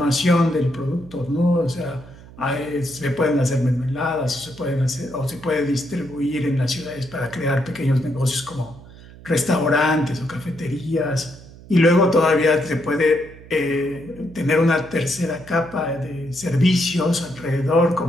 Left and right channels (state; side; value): noise; right; hum, 19 dB below the sound